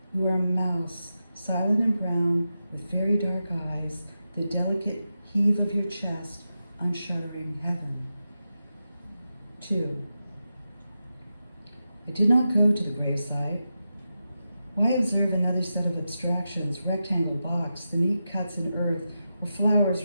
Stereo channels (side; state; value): both; inverted; correlation -0.90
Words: you are a mouse, silent and brown, with very dark eyes, the delicate heave of your chest unshuttering heaven. 2. I did not go to the graveside. Why observe another set of abstractions, rectangle box, the neat cuts in earth, or flowers